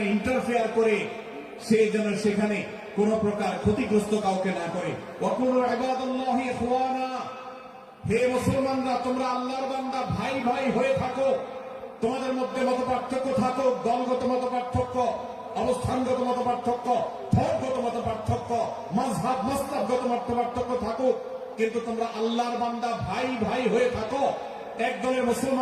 ইন্টারফেয়ার করে সে যেন সেখানে কোন প্রকার ক্ষতিগ্রস্ত কাউকে না করে। ওয়া কুনু ইবাদাল্লাহি ইখওয়ানা, হে মুসলমানরা, তোমরা আল্লাহর বান্দা, ভাই ভাই হয়ে থাকো। তোমাদের মধ্যে মত পার্থক্য থাকুক, দলগত মত পার্থক্য, অবস্থানগত মত পার্থক্য, ধর্মগত মত পার্থক্য পার্থক্য, মাযহাব মাসলাকগত মত পার্থক্য থাকুক, কিন্তু তোমরা আল্লাহর বান্দা ভাই ভাই হয়ে থাকো। এক দলের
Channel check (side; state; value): both; identical; correlation 1.00